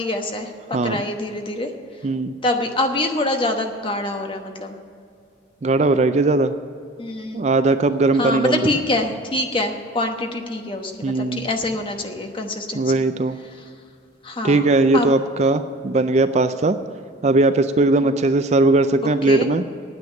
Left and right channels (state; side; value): normal; both; correlation 0.42